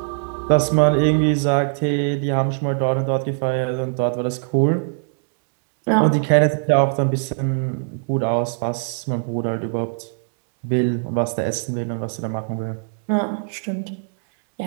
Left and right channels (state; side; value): silent; left; 65 dB below the other